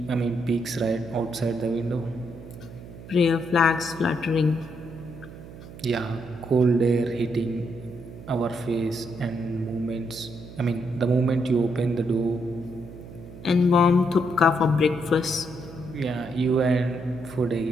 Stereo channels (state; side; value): noise; right; hum, 15 dB below the sound